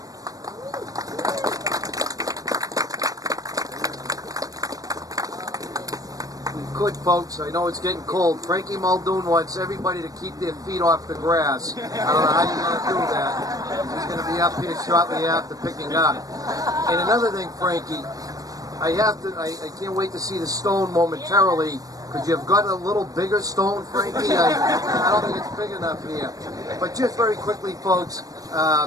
Good, folks. I know it's getting cold. Frankie Muldoon wants everybody to keep their feet off the grass. I don't know how you're going to do that. He's going to be up here shortly after picking up. And another thing, Frankie, I can't wait to see the stone momentarily. Could you have got a little bigger stone, Frankie? I don't think it's big enough here. But just very quickly, folks,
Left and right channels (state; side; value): late; left; 0.18 ms